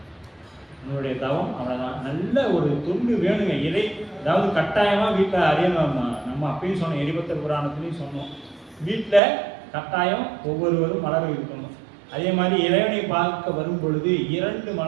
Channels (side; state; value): left; drops out; at 9.2 s